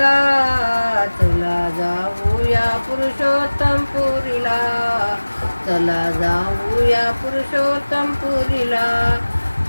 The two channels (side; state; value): both; inverted; correlation -1.00